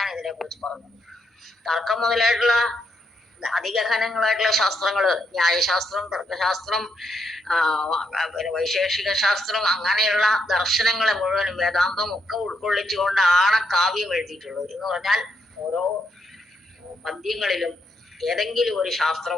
ഇതിനെക്കുറിച്ച് പറഞ്ഞത്. തർക്കം മുതലായിട്ടുള്ള അതിഗഹനങ്ങളായിട്ടുള്ള ശാസ്ത്രങ്ങള്, ന്യായശാസ്ത്രം, തർക്കശാസ്ത്രം, പിന്നെ വൈശേഷിക ശാസ്ത്രം, അങ്ങനെയുള്ള ദർശനങ്ങളെ മുഴുവനും വേദാന്തം ഒക്കെ ഉൾക്കൊള്ളിച്ചുകൊണ്ടാണ് കാവ്യം എഴുതിയിട്ടുള്ളത്. എന്ന് പറഞ്ഞാൽ ഓരോ പദ്യങ്ങളിലും ഏതെങ്കിലും ഒരു ശാസ്ത്രം,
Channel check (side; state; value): both; normal; correlation 0.77